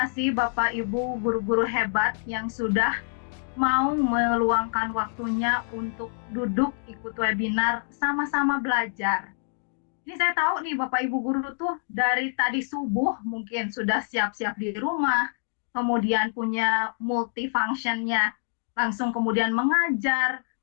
Bapak Ibu guru-guru hebat yang sudah mau meluangkan waktunya untuk duduk ikut webinar sama-sama belajar. Ini saya tahu nih Bapak Ibu guru tuh dari tadi subuh mungkin sudah siap-siap di rumah, kemudian punya multifunctionnya, langsung kemudian mengajar,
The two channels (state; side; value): silent; right; digital silence